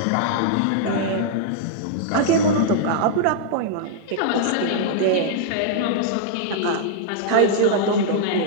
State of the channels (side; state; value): both; different; correlation -0.01